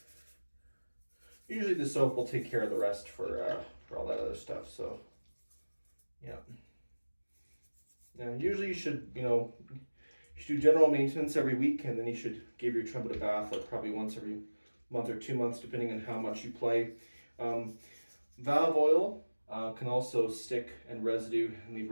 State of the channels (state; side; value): inverted; both; correlation -1.00